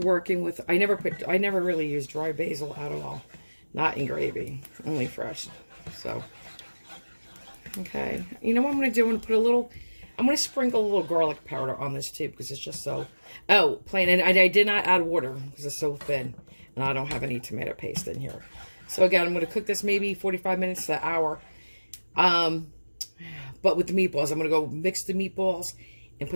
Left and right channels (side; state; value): both; inverted; correlation -1.00